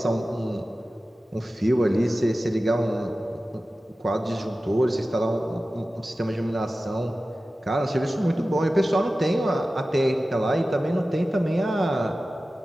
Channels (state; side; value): normal; both; correlation 0.95